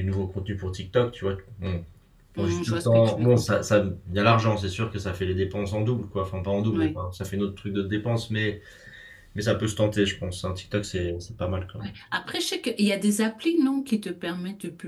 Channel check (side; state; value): both; identical; correlation 1.00